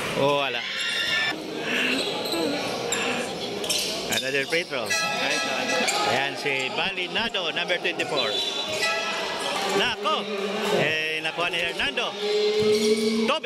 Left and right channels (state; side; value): identical; both; correlation 1.00